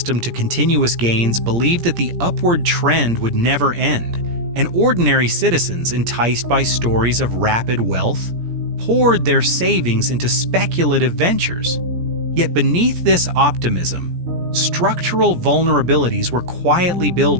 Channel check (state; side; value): late; left; 17 ms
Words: to continuous gains believed that the upward trend would never end, and ordinary citizens, enticed by stories of rapid wealth, poured their savings into speculative ventures. Yet beneath this optimism, structural vulnerabilities were quietly